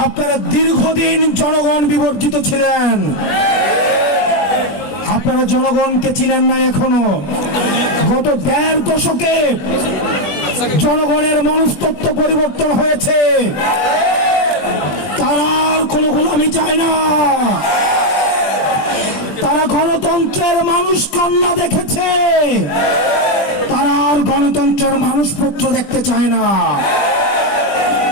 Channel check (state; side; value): late; right; 20 ms